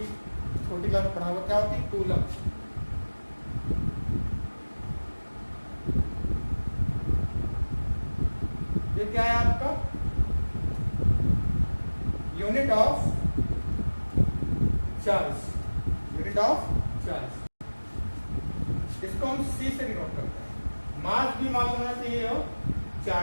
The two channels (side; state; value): both; inverted; correlation -1.00